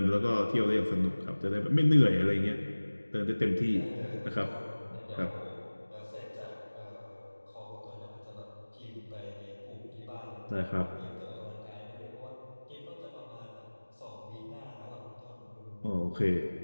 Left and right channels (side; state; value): both; inverted; correlation -1.00